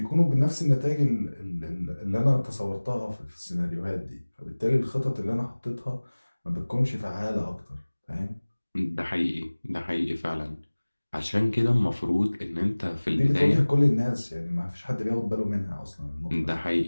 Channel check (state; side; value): inverted; both; correlation -1.00